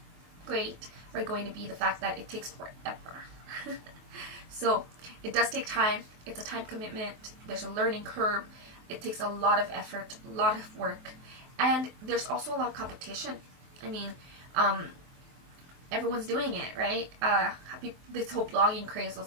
great are going to be the fact that it takes forever. So it does take time. It's a time commitment. There's a learning curve. It takes a lot of effort, a lot of work. And there's also a lot of competition. I mean, everyone's doing it, right? This whole blogging craze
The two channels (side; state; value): left; late; 23 ms